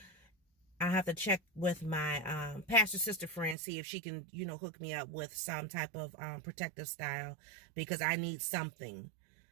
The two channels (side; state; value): left; drops out; at 3.6 s